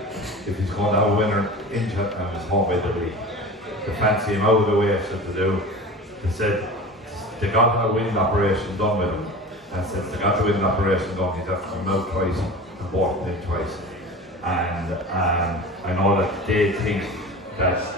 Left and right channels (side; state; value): both; normal; correlation 0.34